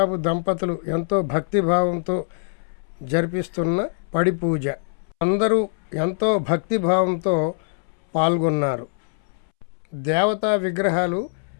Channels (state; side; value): silent; right; 63 dB below the other